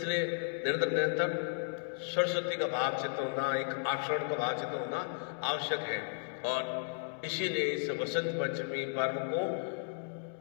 निरंतर निरंतर सरस्वती का भाव चिंतन होना, एक आकर्षण का भाव चिंतन होना आवश्यक है। और इसीलिए इस वसंत पंचमी पर्व को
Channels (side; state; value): right; silent; digital silence